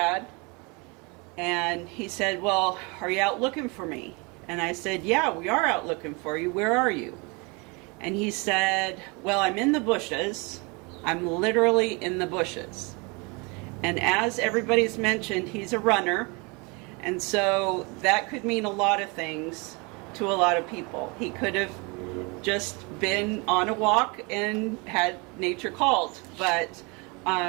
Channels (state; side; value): quieter; left; 29.4 dB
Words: And he said, "Well, are you out looking for me?" And I said, "Yeah, we are out looking for you. Where are you?" And he said, "Well, I'm in the bushes. I'm literally in the bushes." And as everybody's mentioned, he's a runner. And so that could mean a lot of things to a lot of people. He could have just been on a walk and had nature called. But